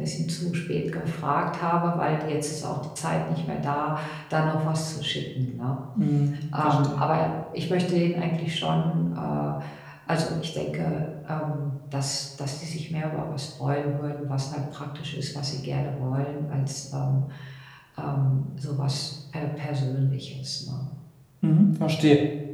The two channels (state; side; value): identical; both; correlation 1.00